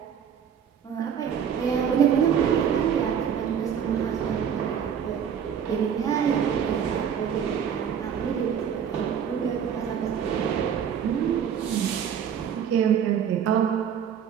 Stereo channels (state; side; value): quieter; left; 8.1 dB